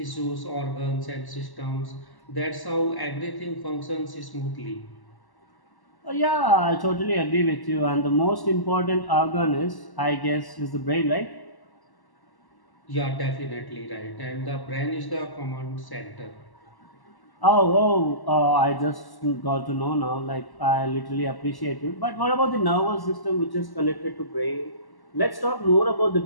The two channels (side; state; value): right; late; 1.1 ms